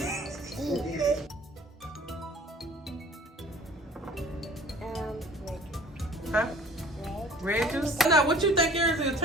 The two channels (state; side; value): normal; both; correlation 0.50